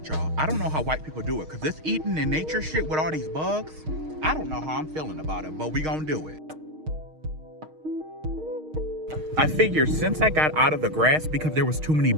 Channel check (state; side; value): late; left; 6.4 ms